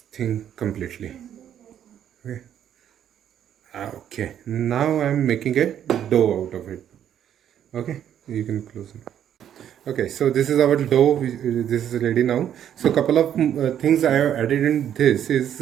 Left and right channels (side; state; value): left; quieter; 10.0 dB